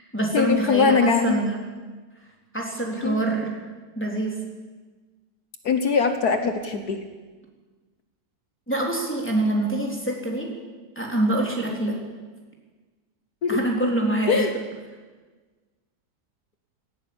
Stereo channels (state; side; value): normal; both; correlation 0.12